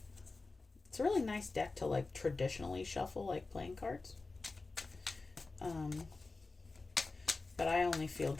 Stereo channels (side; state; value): right; quieter; 3.6 dB